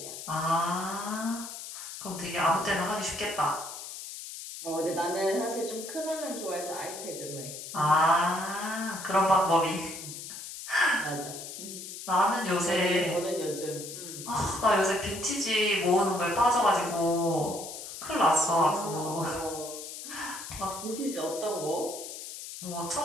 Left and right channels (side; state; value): left; noise; hiss, 10 dB below the sound